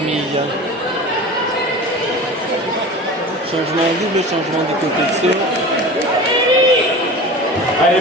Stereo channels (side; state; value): both; normal; correlation 0.34